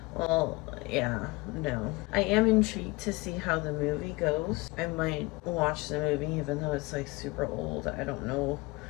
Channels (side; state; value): right; quieter; 23.7 dB